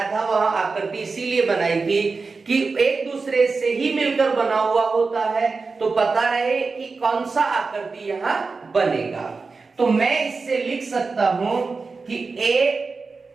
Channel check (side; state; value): left; quieter; 4.3 dB